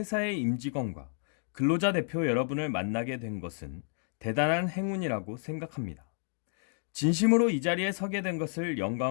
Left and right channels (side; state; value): right; silent; digital silence